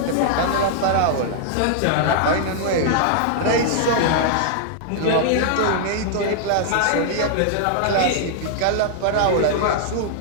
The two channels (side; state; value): both; different; correlation -0.01